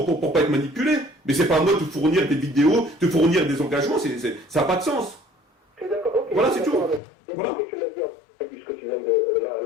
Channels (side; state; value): right; drops out; at 7.0 s